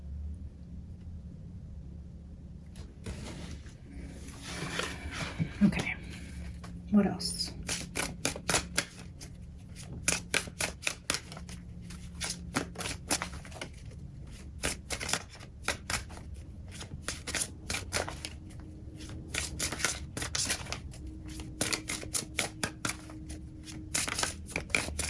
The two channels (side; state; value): both; identical; correlation 1.00